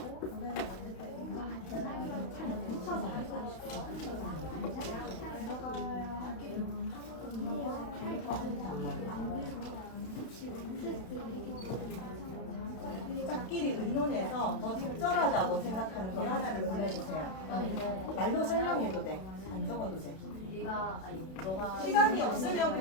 노래를 만들 때 이거 들어가야 할 기능은 짝끼리 의논해서 더 적절하다고 생각하는 거 하나를 골라주세요. 말로 설명해도 돼. 안 적어도 돼. 시간이 없으면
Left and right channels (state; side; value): late; right; 32 ms